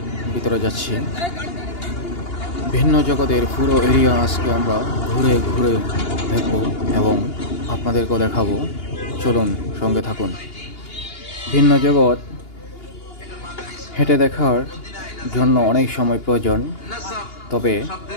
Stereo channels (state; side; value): late; right; 2.8 ms